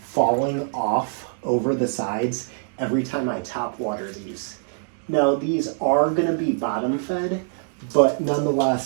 falling off over the sides every time I top water these. Now these are gonna be bottom fed, but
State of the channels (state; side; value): silent; left; digital silence